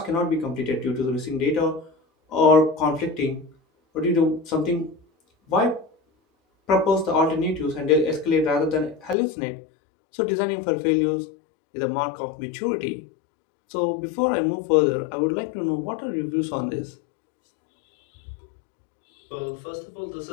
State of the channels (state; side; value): drops out; right; at 9.2 s